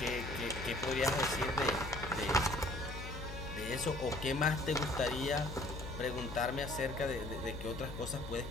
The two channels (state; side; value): noise; left; hum, 9 dB below the sound